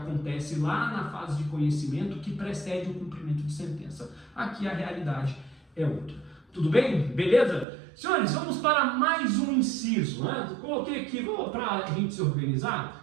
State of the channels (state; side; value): drops out; left; at 7.7 s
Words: lá na fase de conhecimento que precede o cumprimento de sentença. Aqui a realidade é outra. Tudo bem? Beleza? Senhores, vamos para mais um inciso, né? Coloquei aqui, para a gente se